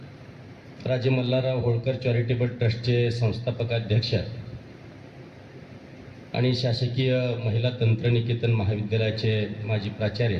राजे मल्हारराव होळकर चॅरिटेबल ट्रस्टचे संस्थापक अध्यक्ष आणि शासकीय महिला तंत्रनिकेतन महाविद्यालयाचे माजी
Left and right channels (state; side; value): identical; both; correlation 1.00